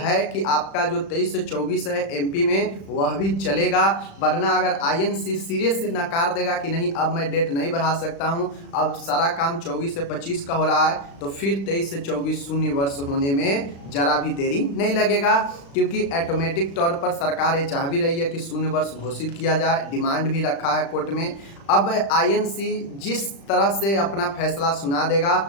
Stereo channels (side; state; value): right; late; 36 ms